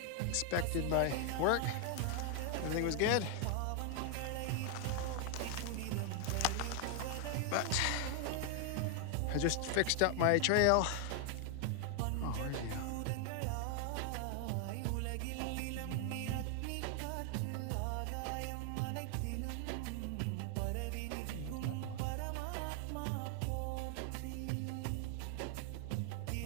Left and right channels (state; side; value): different; both; correlation 0.00